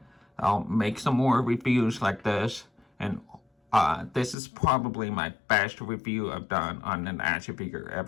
I'll make some more reviews like this. And this is probably my best review I've done on an action figure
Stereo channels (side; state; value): right; drops out; at 4.4 s